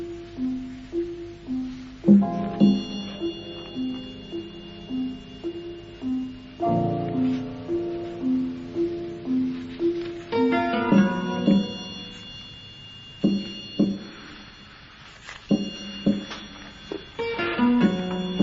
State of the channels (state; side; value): identical; both; correlation 1.00